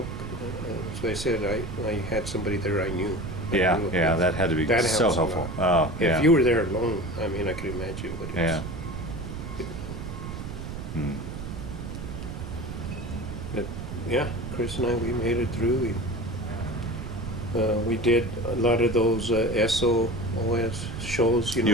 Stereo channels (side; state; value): right; noise; rumble, 7 dB below the sound